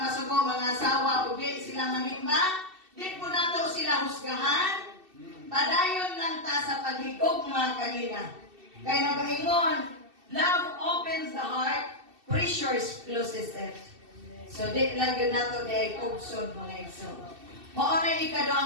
masuko mga asawa, o di sila manimba, di po nato sila husgahan, padayon lang ta sa paghigugma kanina. Kaya nagaingon, love opens the heart, pressure closes it. So di lang yun nato di ay kugsod mga igso. Mao na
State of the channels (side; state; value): left; late; 2.7 ms